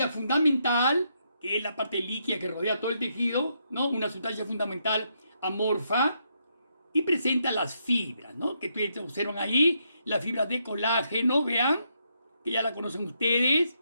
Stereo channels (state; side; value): inverted; both; correlation -0.78